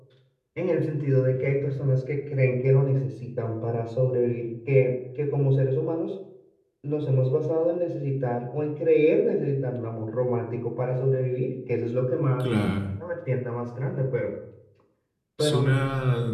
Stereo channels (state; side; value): identical; both; correlation 1.00